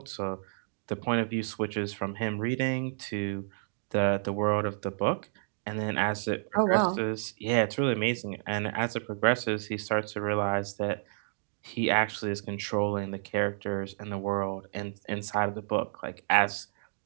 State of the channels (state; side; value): silent; left; digital silence